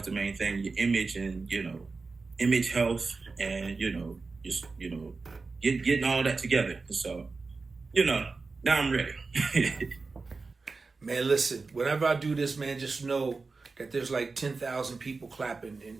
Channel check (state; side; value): quieter; left; 4.1 dB